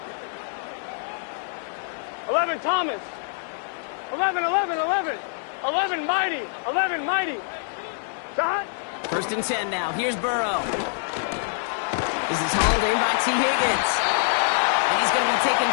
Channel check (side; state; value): right; silent; digital silence